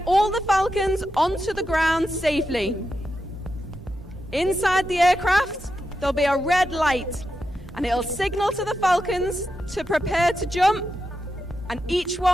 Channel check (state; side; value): normal; both; correlation 0.87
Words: all the Falcons onto the ground safely. Inside the aircraft, there'll be a red light, and it'll signal to the Falcons to prepare to jump, and each